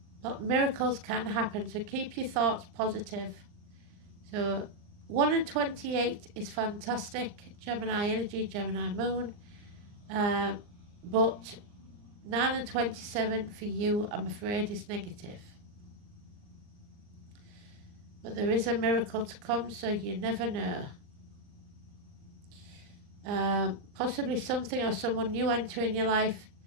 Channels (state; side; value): late; left; 39 ms